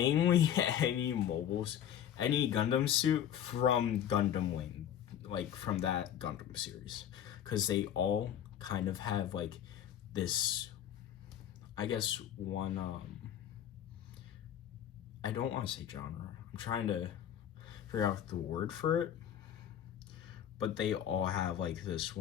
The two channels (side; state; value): right; quieter; 10.0 dB